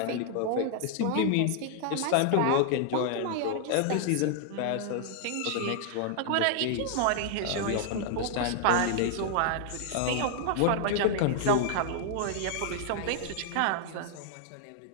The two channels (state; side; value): different; both; correlation 0.00